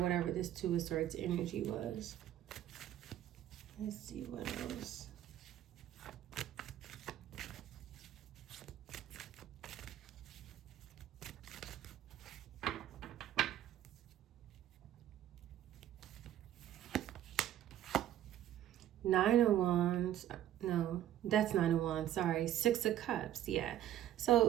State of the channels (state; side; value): quieter; left; 12.0 dB